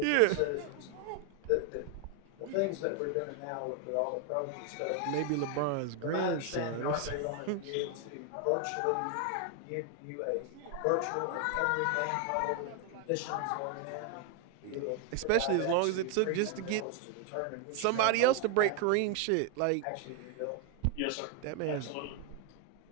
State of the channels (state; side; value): different; both; correlation 0.01